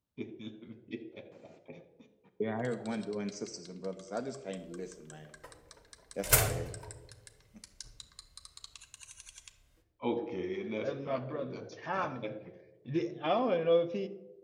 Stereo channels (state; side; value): identical; both; correlation 1.00